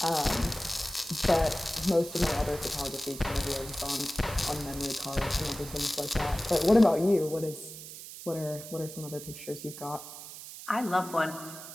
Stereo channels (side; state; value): right; noise; hiss, 12 dB below the sound